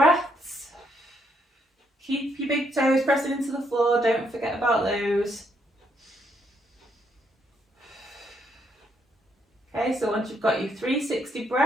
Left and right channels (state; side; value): normal; both; correlation 0.74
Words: Keep your big toes pressing into the floor. Don't forget about those. Okay, so once you've got your 360